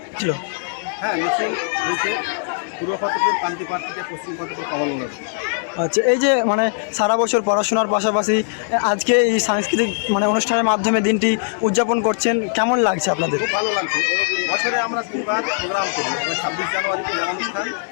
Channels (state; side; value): silent; right; digital silence